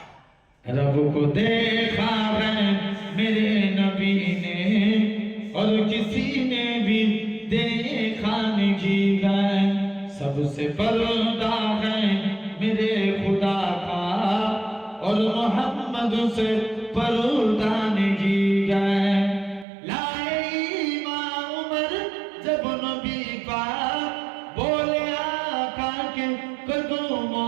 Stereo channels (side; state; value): left; drops out; at 19.7 s